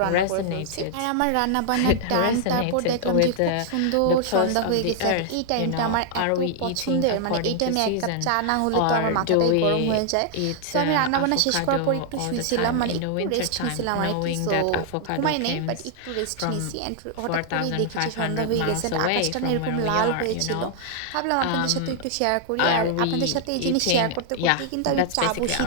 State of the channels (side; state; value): both; different; correlation 0.00